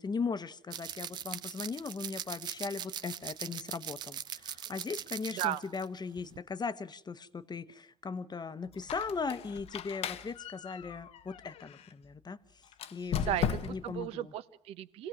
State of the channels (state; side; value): normal; both; correlation 0.40